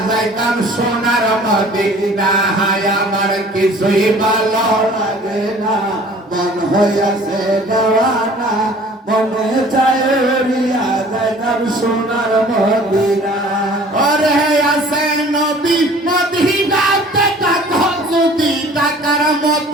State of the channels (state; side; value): normal; both; correlation 0.49